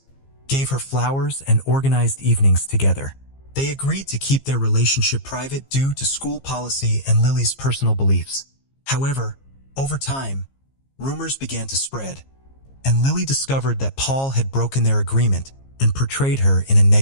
gave her flowers, and organized evenings together. They agreed to keep their relationship private due to school policy and Lily's personal beliefs. However, over time, rumors began to spread, and Lily discovered that Paul had broken their agreement and portrayed her in a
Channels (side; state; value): right; late; 15 ms